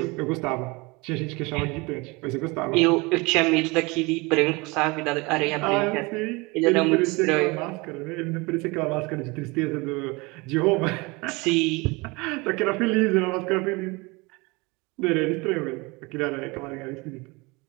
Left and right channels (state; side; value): quieter; left; 25.7 dB